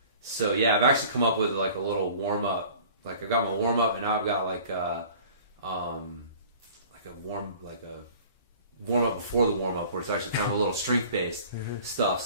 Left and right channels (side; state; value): both; inverted; correlation -0.47